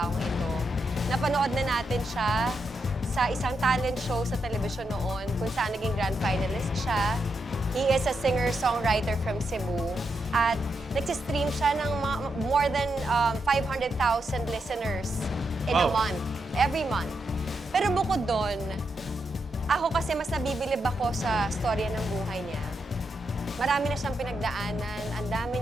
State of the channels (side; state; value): both; normal; correlation 0.83